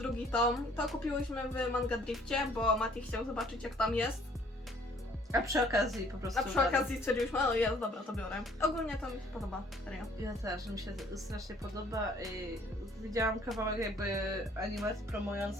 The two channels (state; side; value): normal; both; correlation 0.59